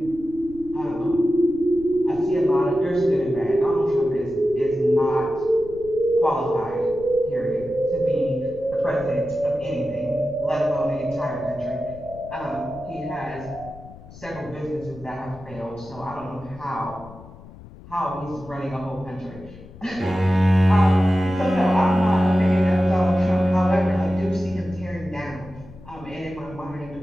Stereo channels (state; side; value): noise; left; rumble, 18 dB below the sound